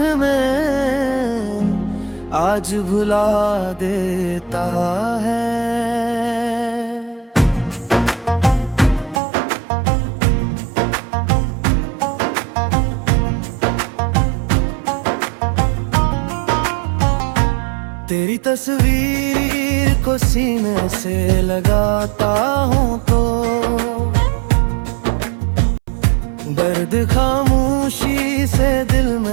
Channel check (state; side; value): drops out; left; at 9.2 s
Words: आज भुला देता है। तेरी तस्वीर को सीने से लगाता हूँ तो दर्द खामोशी से दिल